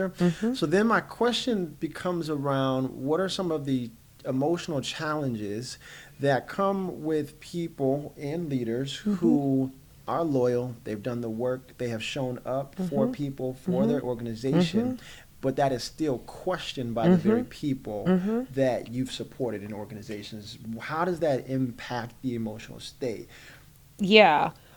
So then my question becomes around, what are some of the emotional challenges that come with people and leaders who are loyal, they've done the work, they have shown up for people, for their organization, but that is still questioned by the very people that you've supported in organizations. How does that impact the emotional state? Yeah.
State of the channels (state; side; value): identical; both; correlation 1.00